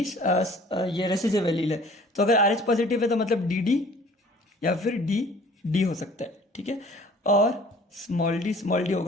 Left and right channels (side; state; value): both; normal; correlation 0.51